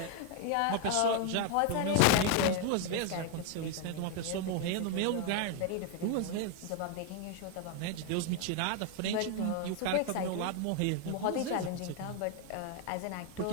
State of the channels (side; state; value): both; different; correlation 0.01